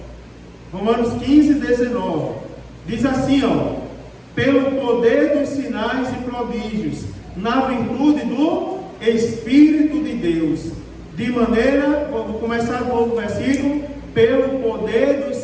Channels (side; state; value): both; identical; correlation 1.00